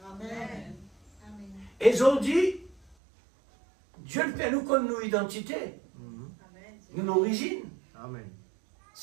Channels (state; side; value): drops out; left; at 3.0 s